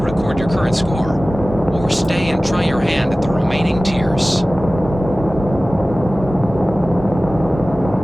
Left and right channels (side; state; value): both; normal; correlation 0.97